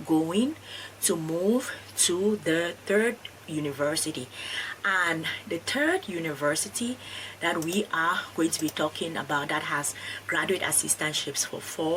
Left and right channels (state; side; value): identical; both; correlation 1.00